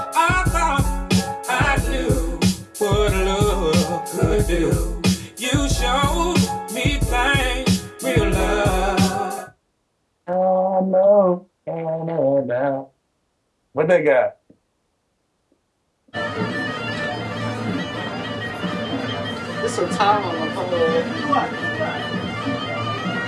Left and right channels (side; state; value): both; identical; correlation 1.00